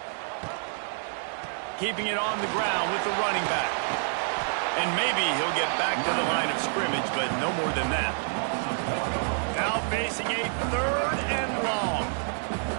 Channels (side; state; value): left; silent; 58 dB below the other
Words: Keeping it on the ground with the running back. And maybe he'll get back to the line of scrimmage, but no more than that. Now facing a 3rd and long.